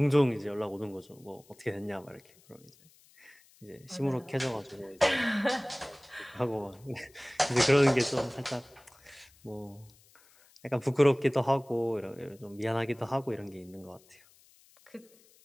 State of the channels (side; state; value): left; noise; hiss, 28 dB below the sound